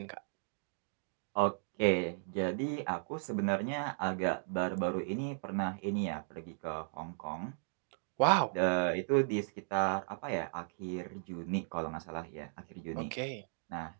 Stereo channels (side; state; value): left; silent; digital silence